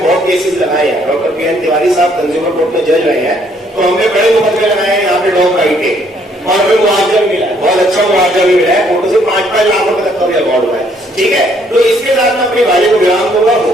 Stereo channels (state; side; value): normal; both; correlation 0.66